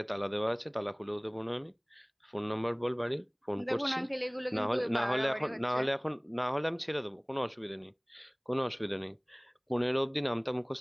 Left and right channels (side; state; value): both; identical; correlation 1.00